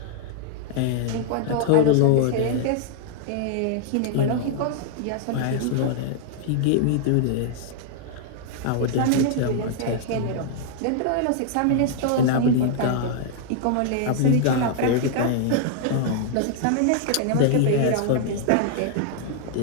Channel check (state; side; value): different; both; correlation -0.01